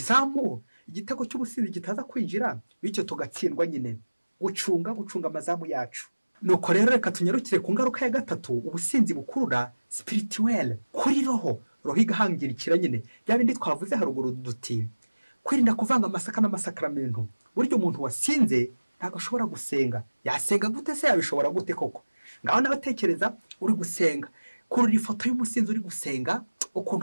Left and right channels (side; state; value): both; inverted; correlation -1.00